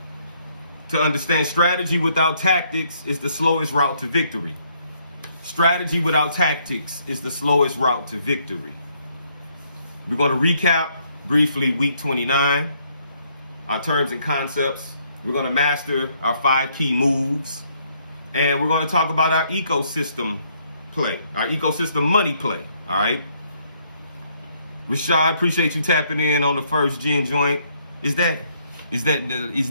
to understand strategy without tactics is the slowest route to victory. Strategy without tactics is the slowest route to victory. We're going to recap briefly week 29, our terms and concepts. We're going to master our 5 key moves. And we're going to talk about our ecosystem play, our ecosystem money play. All right. Rashad, appreciate you tapping in on the First Gen joint. Is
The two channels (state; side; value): inverted; both; correlation -0.69